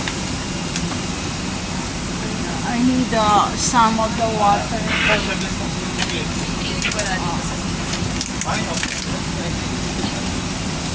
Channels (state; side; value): identical; both; correlation 1.00